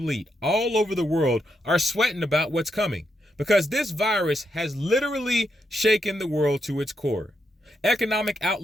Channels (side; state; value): both; normal; correlation 0.82